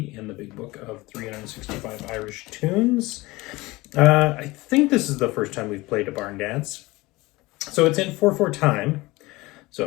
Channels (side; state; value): right; quieter; 21.1 dB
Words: in the big book of 365 Irish Tunes. I think this is the first time we've played a barn dance. So it's in 4/4 time. So